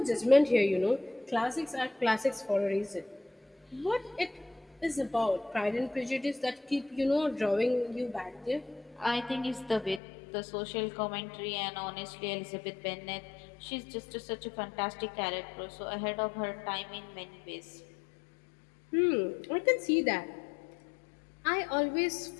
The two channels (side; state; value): right; drops out; at 10.0 s